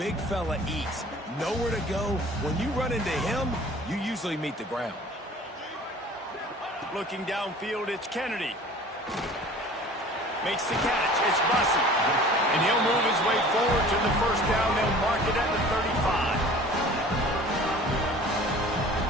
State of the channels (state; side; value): normal; both; correlation 0.45